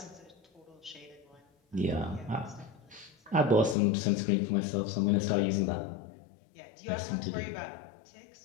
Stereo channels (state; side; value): drops out; right; at 3.8 s